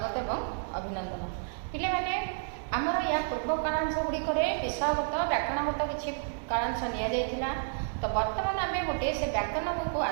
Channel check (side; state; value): left; silent; digital silence